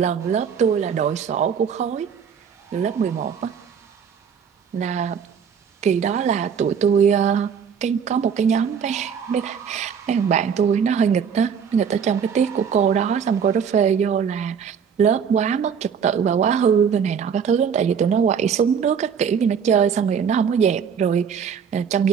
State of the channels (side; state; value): left; quieter; 7.1 dB